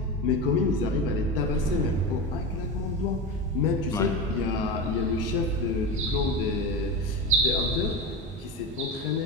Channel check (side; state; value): both; normal; correlation 0.22